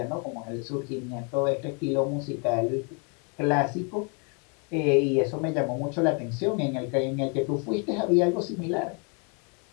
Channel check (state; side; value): quieter; right; 36.7 dB